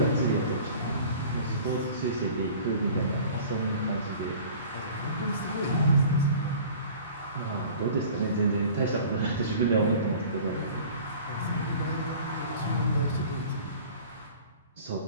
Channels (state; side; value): inverted; both; correlation -0.45